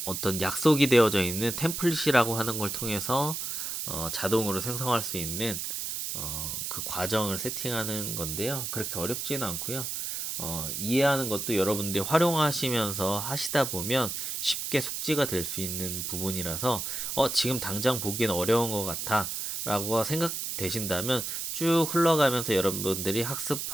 어떤 약속이 되어져 있는 템플릿이라고 하는 걸 통해서 자동으로 생성할 수 있는 그 과정을 세팅하는 건데요. 그렇게 어렵지는 않고요. 이해하는 것도 여러분들이 활용하시면서 하시다 보면 쉽게 숙지가 될 수 있는 부분이라서 지금 당장 보기엔 어려운 것 같아 라고 생각되신다면 쭉 흘러가면서 여러분들이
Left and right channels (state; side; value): noise; right; hiss, 4 dB below the sound